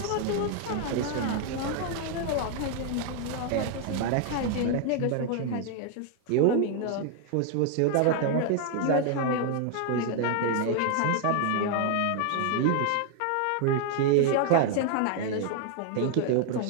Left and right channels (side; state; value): both; different; correlation 0.00